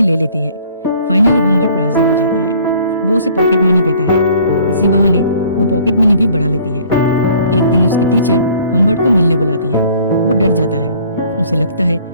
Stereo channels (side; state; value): both; inverted; correlation -0.55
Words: ले लेती है। फाइनली हम्बर्ट राजी हो जाता है। वो उसे पॉकेट मनी देता है। इसी बहाने वो पॉकेट मनी भी बढ़ा लेती है। एक दिन उसकी टीचर हम्बर्ट को मिलने बुलाती है। वो डर जाता है। उसे लगता है